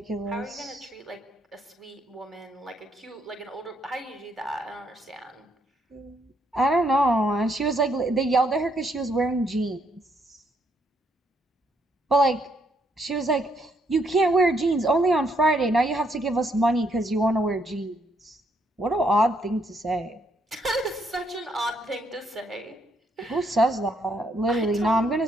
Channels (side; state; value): both; normal; correlation 0.73